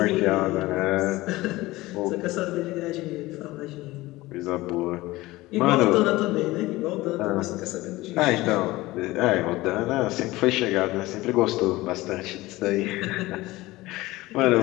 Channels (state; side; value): quieter; right; 19.1 dB